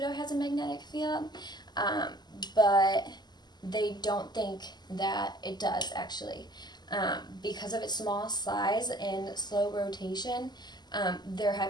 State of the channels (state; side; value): late; right; 0.21 ms